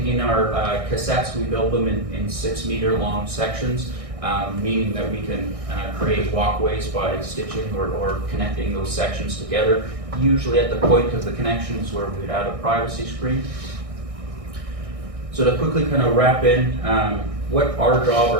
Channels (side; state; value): left; late; 1.6 ms